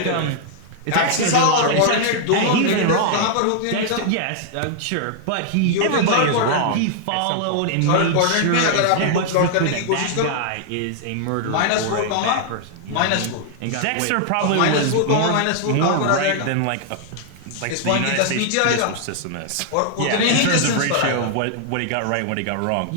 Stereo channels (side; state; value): both; different; correlation -0.01